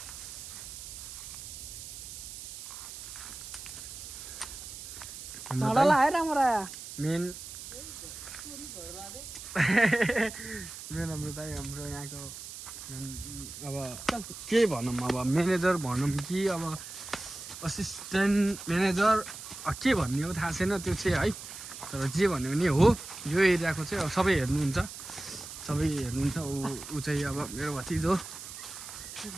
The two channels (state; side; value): noise; right; hiss, 11 dB below the sound